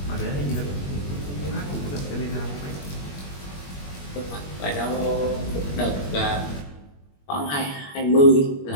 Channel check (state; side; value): late; right; 21 ms